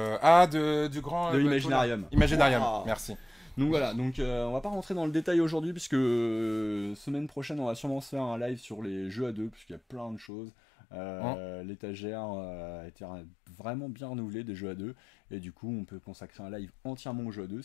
grand... De Imaginarium. Imaginarium, Wow. merci. Donc voilà, donc on va pas rentrer dans le détail aujourd'hui puisque semaine prochaine on va sûrement se faire un live sur les jeux à deux puisqu'il y a plein de choses. L'étagère a été vraiment bien renouvelée des jeux à deux et du coup on peut consacrer un live entièrement aux jeux à deux,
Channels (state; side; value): drops out; right; at 10.3 s